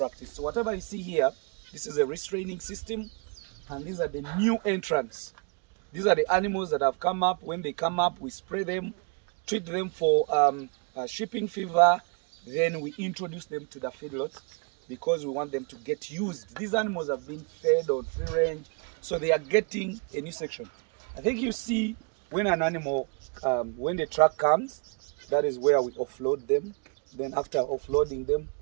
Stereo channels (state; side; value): quieter; left; 36.7 dB